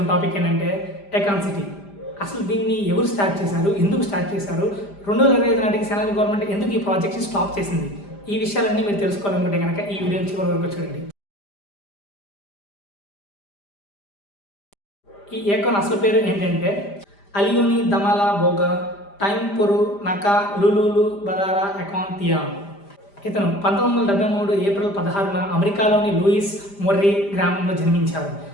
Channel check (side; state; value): right; late; 5.0 ms